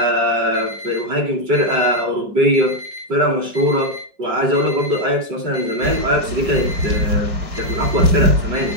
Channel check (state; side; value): late; left; 4.9 ms